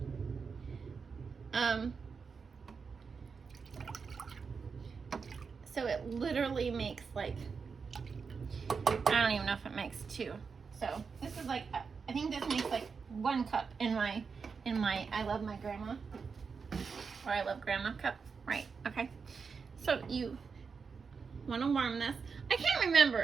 So it literally makes like, I don't even know if it makes 2. So this is like, I think this makes like 1 cup in my I love my grandma, or I love grandma cup, right? Okay. So you want to warm this. I can't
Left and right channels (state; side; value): quieter; left; 5.4 dB